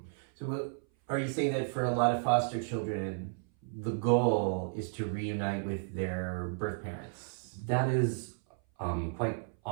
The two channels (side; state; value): left; silent; 56 dB below the other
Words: So are you saying that for a lot of foster children, the goal is to reunite with their birth parents. That is quite